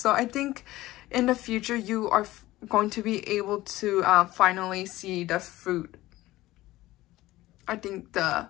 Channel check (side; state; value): right; quieter; 17.1 dB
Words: I think in the future you are going to be able to finally see the fruit. I think the